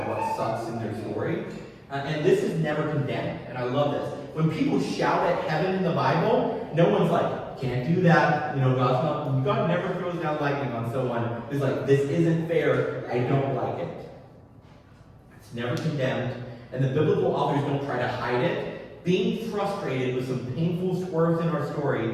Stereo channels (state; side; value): identical; both; correlation 1.00